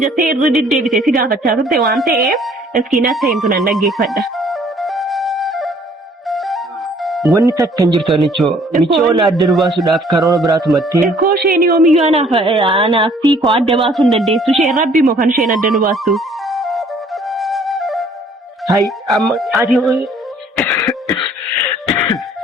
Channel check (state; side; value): normal; both; correlation 0.58